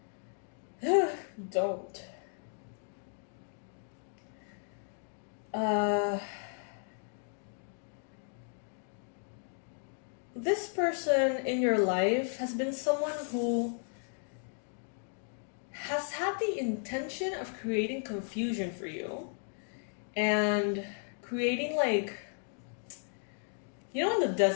Don't. This person in your life has been someone who has had the intention of creating confusion for you and creating like, you know, in the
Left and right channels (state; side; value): silent; right; 55 dB below the other